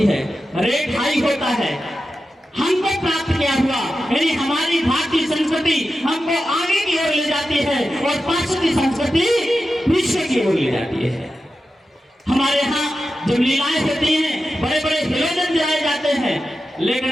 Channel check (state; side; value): normal; both; correlation 0.92